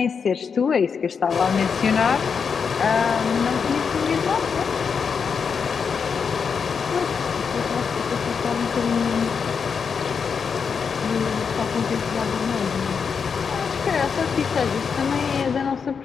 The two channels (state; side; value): quieter; right; 6.1 dB